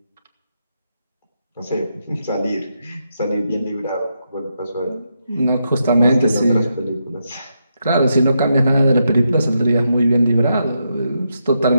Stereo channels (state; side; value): inverted; both; correlation -0.82